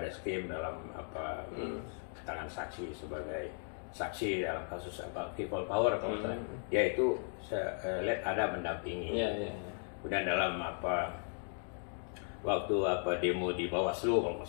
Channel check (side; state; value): right; silent; 53 dB below the other